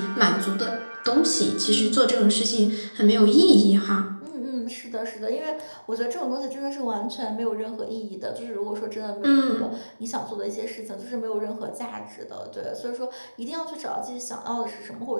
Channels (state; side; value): inverted; both; correlation -1.00